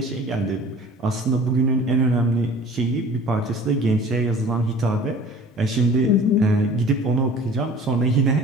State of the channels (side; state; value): both; normal; correlation 0.45